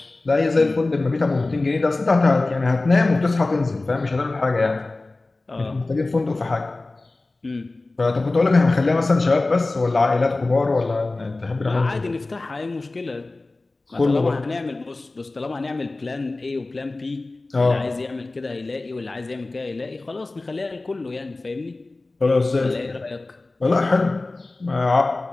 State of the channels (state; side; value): quieter; right; 3.2 dB